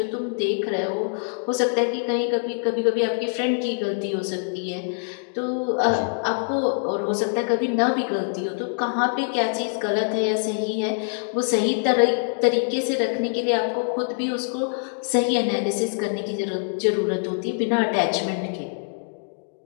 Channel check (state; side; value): silent; right; digital silence